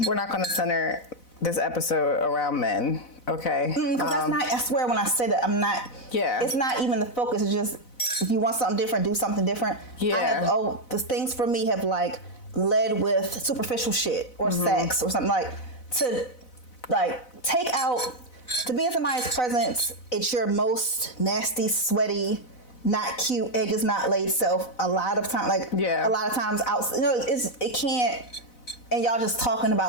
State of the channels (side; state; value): right; late; 4.0 ms